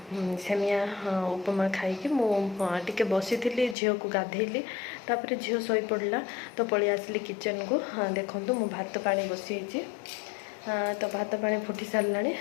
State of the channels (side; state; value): right; drops out; at 3.8 s